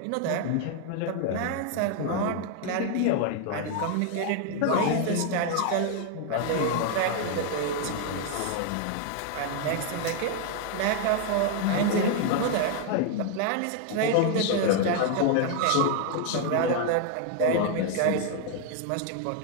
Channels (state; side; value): different; both; correlation 0.00